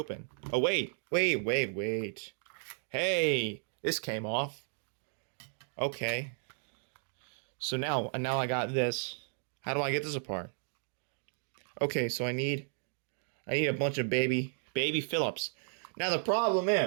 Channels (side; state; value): left; silent; 55 dB below the other